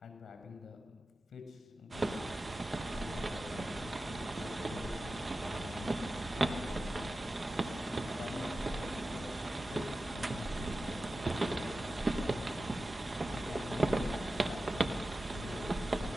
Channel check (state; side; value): normal; both; correlation 0.94